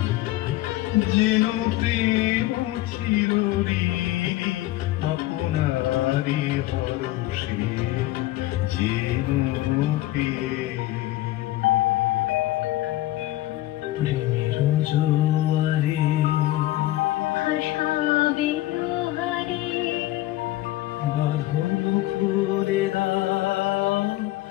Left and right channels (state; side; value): quieter; right; 16.3 dB